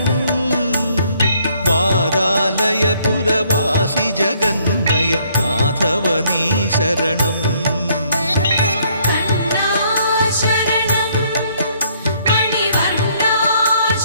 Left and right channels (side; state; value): both; inverted; correlation -0.66